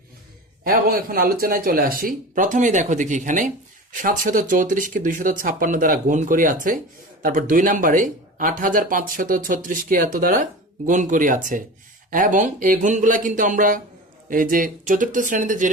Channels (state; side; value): normal; both; correlation 0.32